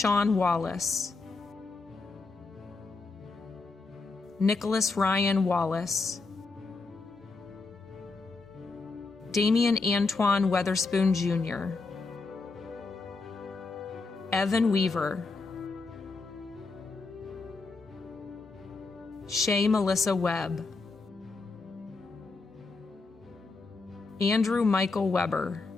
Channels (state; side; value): quieter; right; 3.9 dB